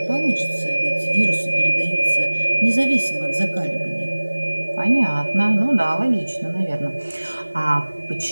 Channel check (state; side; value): inverted; both; correlation -1.00